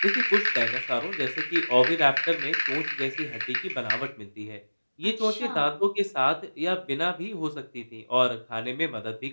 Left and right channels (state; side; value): inverted; both; correlation -1.00